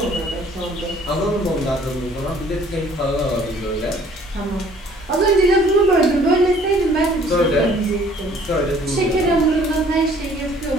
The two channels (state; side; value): normal; both; correlation 0.57